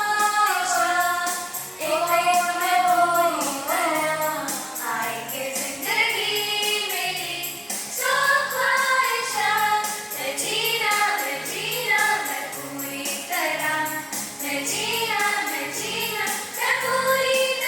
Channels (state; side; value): identical; both; correlation 1.00